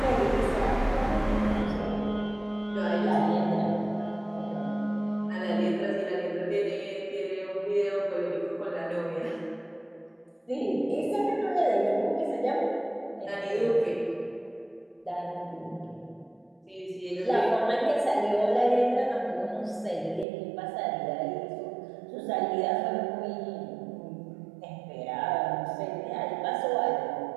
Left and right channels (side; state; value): left; drops out; at 20.2 s